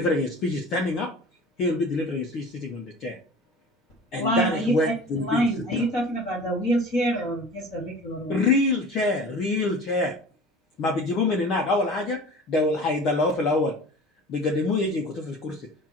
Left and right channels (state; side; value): normal; both; correlation 0.40